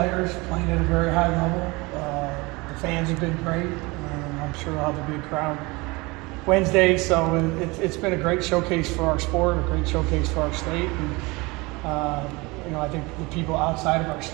playing at a very high level. The fans have been great. I'm sure we'll have a big crowd Wednesday, so it's been a great showcase for our sport, a great showcase for our state, and you know, I think the people outside of our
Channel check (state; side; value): quieter; left; 24.5 dB